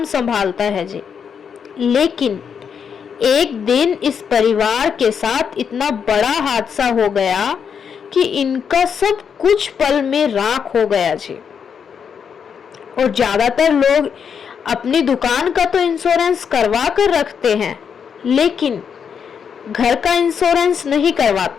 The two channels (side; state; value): right; quieter; 7.0 dB